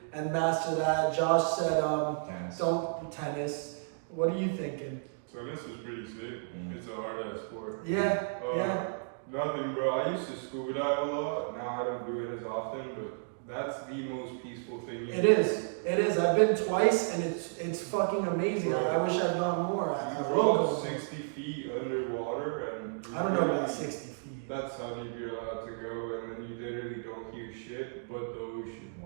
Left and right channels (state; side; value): silent; left; digital silence